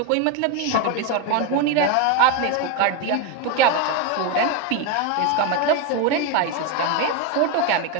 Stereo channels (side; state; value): both; different; correlation 0.02